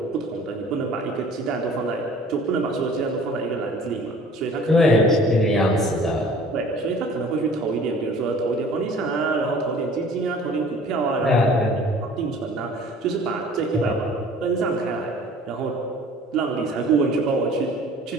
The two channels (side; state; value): both; normal; correlation 0.49